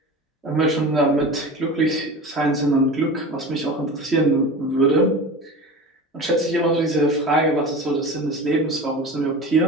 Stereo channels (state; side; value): normal; both; correlation 0.32